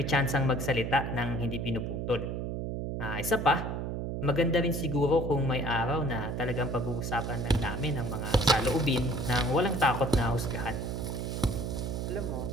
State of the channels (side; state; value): right; noise; hum, 3 dB below the sound